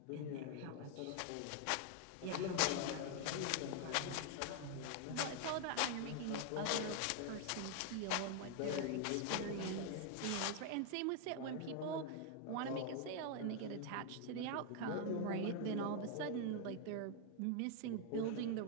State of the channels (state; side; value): different; both; correlation 0.00